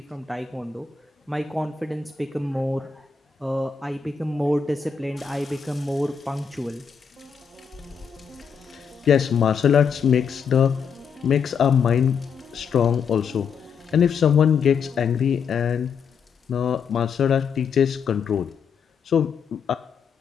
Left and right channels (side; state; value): right; quieter; 6.4 dB